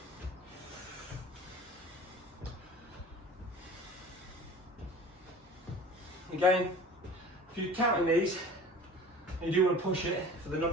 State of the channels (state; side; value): normal; both; correlation 0.42